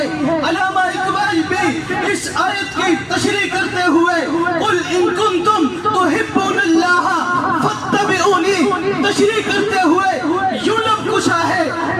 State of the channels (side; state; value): both; identical; correlation 1.00